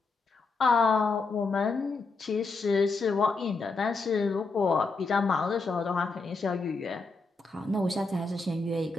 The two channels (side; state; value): right; quieter; 3.9 dB